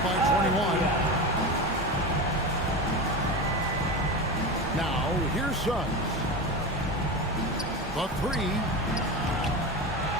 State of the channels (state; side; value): normal; both; correlation 0.23